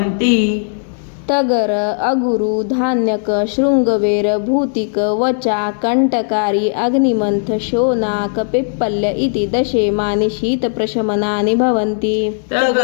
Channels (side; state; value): right; silent; digital silence